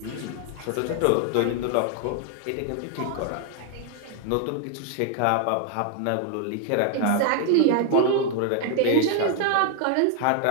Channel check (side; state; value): both; different; correlation 0.00